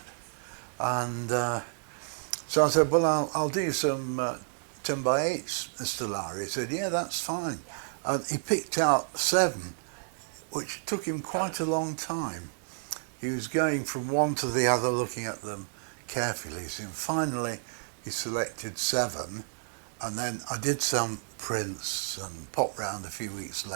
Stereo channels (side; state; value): left; silent; digital silence